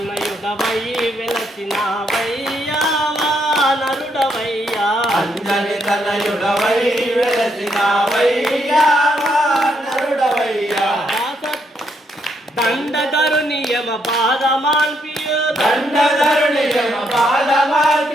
వెలసినావయ్యా వానరుడవయ్యా అంజని తనయుడవై వెలసినావయ్యా వానరుడవయ్యా దండధరుని యమ పాదమాల్పియు దండధరుని యమ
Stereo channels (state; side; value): normal; both; correlation 0.75